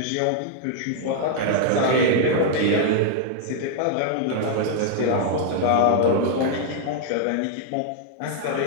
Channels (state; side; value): different; both; correlation -0.01